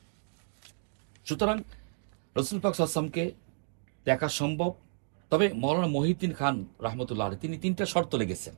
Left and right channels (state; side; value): silent; left; digital silence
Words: সুতরাং রসুল পাক সাল্লাল্লাহু আলাইহি ওয়াসাল্লামকে দেখা সম্ভব। তবে মৌলানা মহিউদ্দিন খান রাহমাতুল্লাহ আলাইহি তিনি 3টা শর্ত লেগেছেন